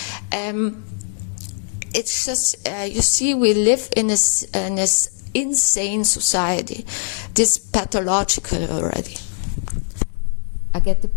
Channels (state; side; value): silent; right; 60 dB below the other